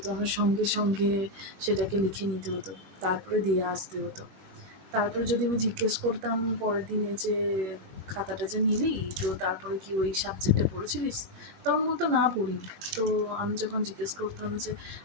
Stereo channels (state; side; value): late; left; 20 ms